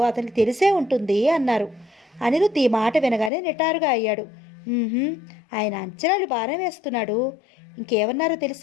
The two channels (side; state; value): right; drops out; at 3.3 s